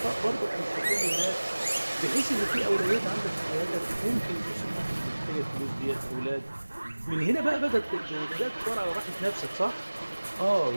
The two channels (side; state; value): both; inverted; correlation -1.00